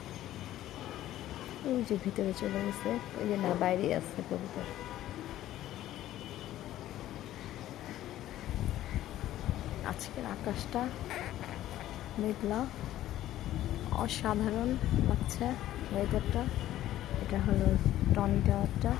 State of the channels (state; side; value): quieter; right; 13.6 dB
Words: ওই যে ভিতরে চলে গেছে, ওই যে না বাইরে আছে কবুতর। আজকের আকাশটা মেঘলা, অসাধারণ লাগছে ওয়েদারটা। এটা হলো টনি টাওয়ারটা,